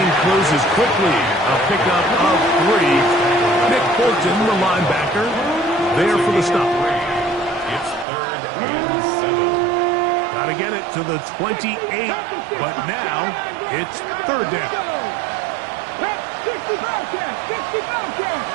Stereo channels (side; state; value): left; drops out; at 8.1 s